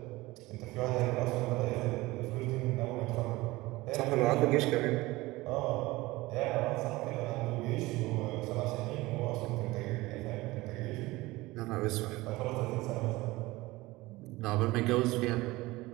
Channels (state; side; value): quieter; left; 20.2 dB